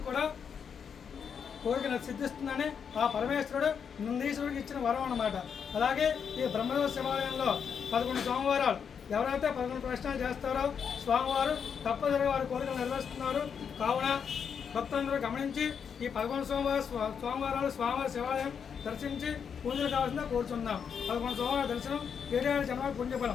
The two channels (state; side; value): quieter; right; 7.0 dB